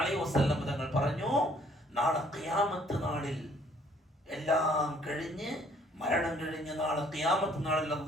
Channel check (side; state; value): both; normal; correlation 0.62